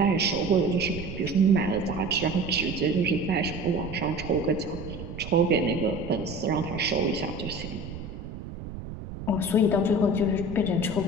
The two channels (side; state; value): right; noise; rumble, 10 dB below the sound